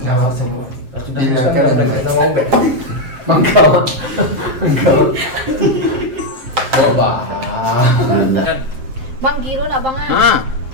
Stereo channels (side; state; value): left; late; 7.6 ms